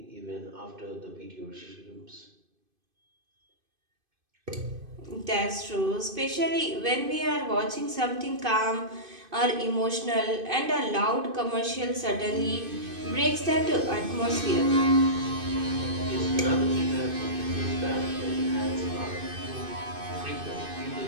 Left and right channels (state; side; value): late; left; 2.5 ms